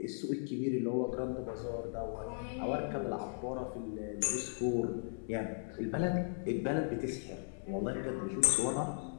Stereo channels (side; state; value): right; silent; digital silence